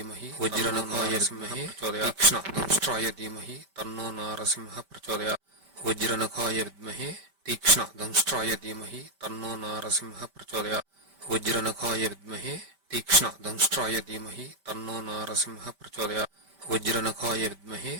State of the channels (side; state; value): left; late; 5.1 ms